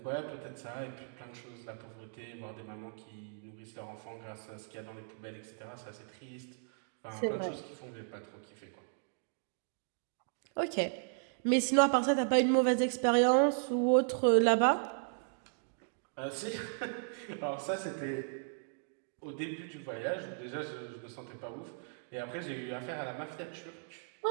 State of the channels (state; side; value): silent; left; digital silence